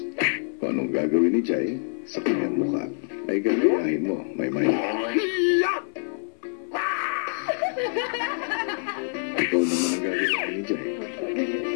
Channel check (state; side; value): silent; right; 61 dB below the other